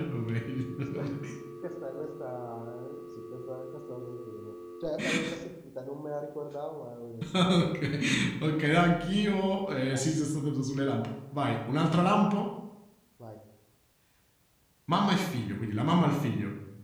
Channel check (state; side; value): identical; both; correlation 1.00